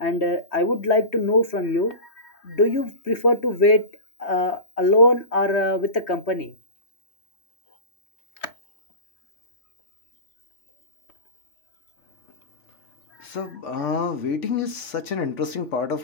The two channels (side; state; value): right; late; 3.2 ms